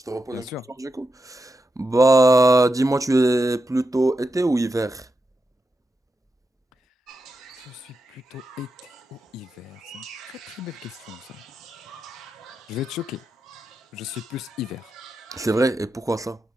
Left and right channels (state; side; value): normal; both; correlation 0.87